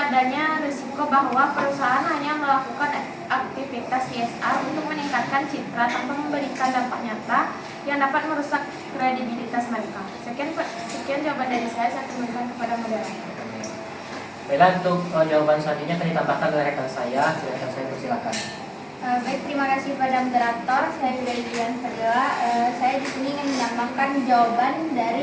risiko bahwa perusahaan hanya melakukan aktivitas CSR untuk meningkatkan citra tanpa memberikan dampak nyata yang dapat merusak kredibilitas mereka. Sekian jawaban dari saya kembalikan kepada moderator. Baiklah, untuk jawaban selanjutnya akan ditambahkan oleh rekan saya. Rekan saya persilakan. Baik, terima kasih pada moderator. Saya dari Dian Fadila. Saya di sini ingin menambahkan jawaban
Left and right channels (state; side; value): identical; both; correlation 1.00